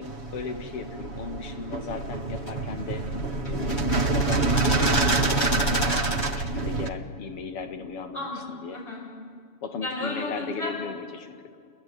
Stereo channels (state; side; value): late; right; 7.1 ms